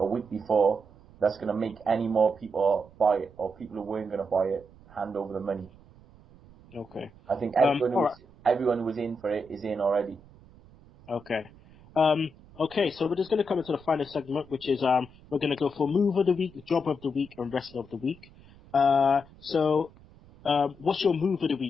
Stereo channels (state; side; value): noise; right; rumble, 24 dB below the sound